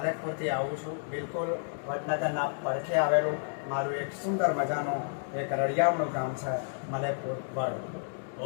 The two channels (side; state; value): right; silent; digital silence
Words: આવું છું. બિલકુલ વડનગરના પડખે આવેલું મારું એક સુંદર મજાનું એક રળિયામણું ગામ છે મલેકપુર વડ.